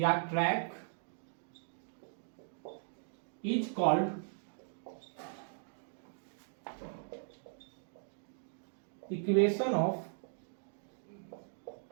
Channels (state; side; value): silent; left; digital silence